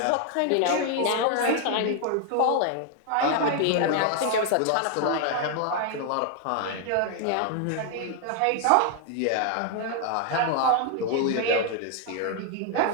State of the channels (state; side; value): different; both; correlation 0.00